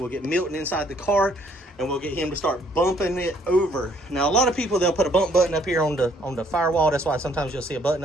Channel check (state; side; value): normal; both; correlation 0.64